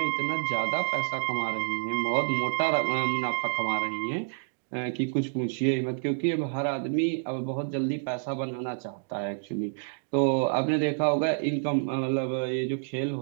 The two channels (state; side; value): silent; left; digital silence